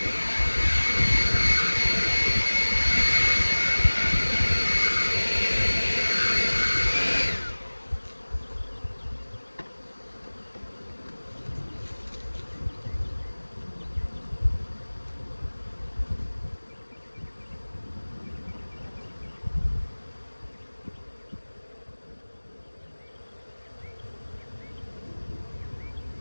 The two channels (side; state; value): both; inverted; correlation -1.00